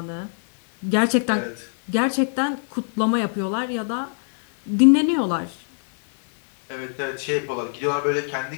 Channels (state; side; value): silent; right; digital silence